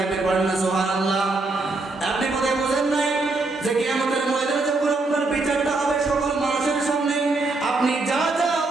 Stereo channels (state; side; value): quieter; left; 3.3 dB